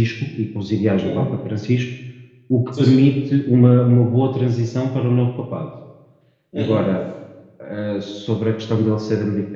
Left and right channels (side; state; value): both; identical; correlation 1.00